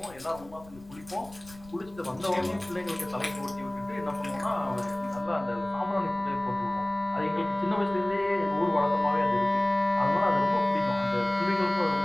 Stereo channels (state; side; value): noise; left; rumble, 22 dB below the sound